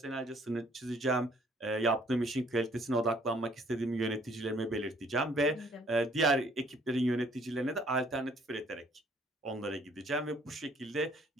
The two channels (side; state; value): both; normal; correlation 0.61